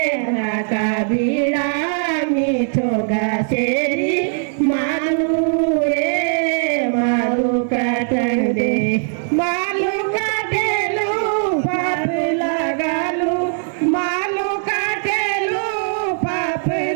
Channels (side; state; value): left; silent; 66 dB below the other